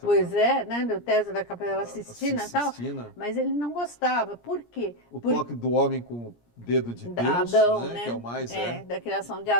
Pois né? Do teto da Capela Sistina e tal. Mas ele não gostava. Por quê? Toque do homem com o dedo de Deus, Adão, né? Que é o mais... da criação de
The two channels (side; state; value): right; late; 17 ms